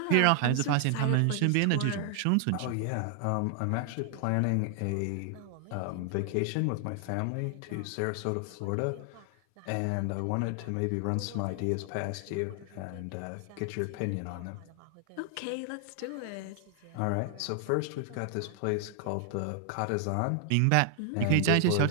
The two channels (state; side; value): different; both; correlation 0.00